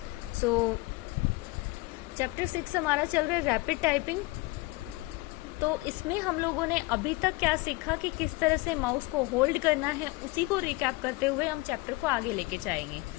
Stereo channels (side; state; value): right; quieter; 22.9 dB